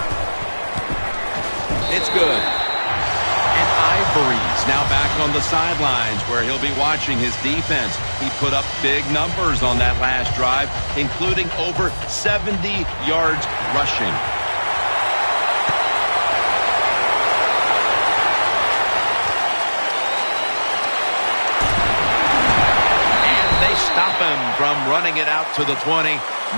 It's good. And Ivory's now back on the sidelines where he'll be watching his defense. He put up big numbers on that last drive, including over 70 yards rushing. Stop him from running it out to the 20.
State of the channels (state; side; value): inverted; both; correlation -1.00